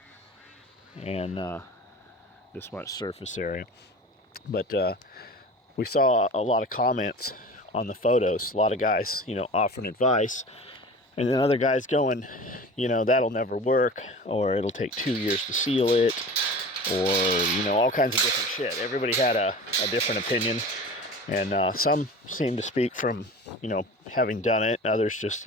And this much surface area. But we saw a lot of comments on the photos, a lot of guys, offering advice. And then other guys going, that'll never work, or it'll take 2 years to seal it, or, all kinds of different shit. Everybody had a different opinion. And some seem to speak from, having done it. Others just,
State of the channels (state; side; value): normal; both; correlation 0.37